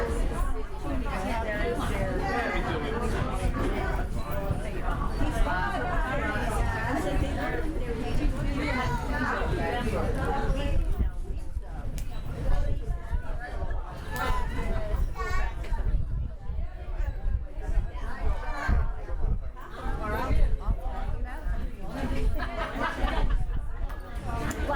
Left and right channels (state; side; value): identical; both; correlation 1.00